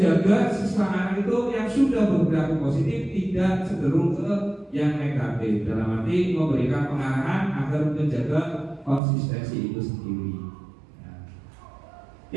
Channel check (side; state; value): left; drops out; at 9.0 s